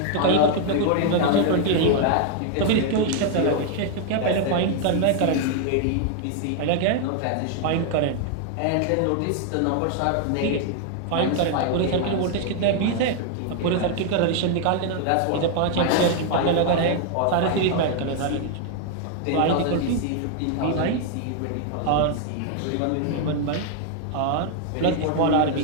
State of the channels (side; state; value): both; different; correlation 0.00